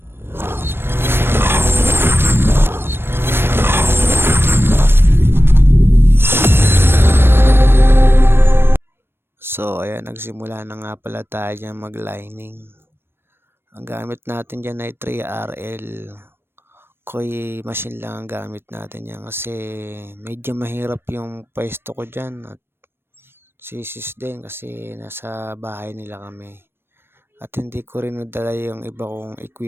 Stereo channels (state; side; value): late; left; 0.11 ms